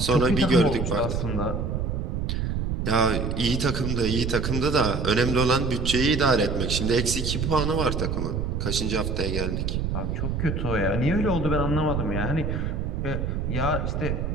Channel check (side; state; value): right; noise; rumble, 1 dB below the sound